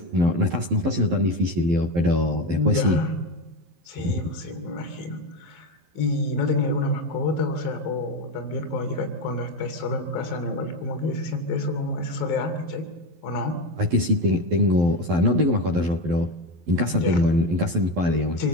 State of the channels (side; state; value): left; late; 12 ms